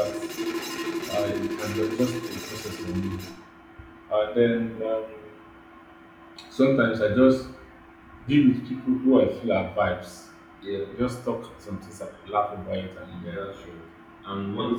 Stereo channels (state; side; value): identical; both; correlation 1.00